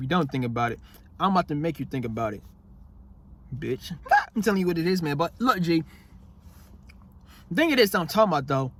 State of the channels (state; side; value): identical; both; correlation 1.00